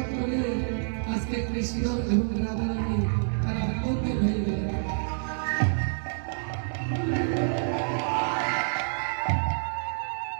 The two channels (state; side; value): silent; left; digital silence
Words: করে আজকে কৃষ্ণ এবং রাধারানী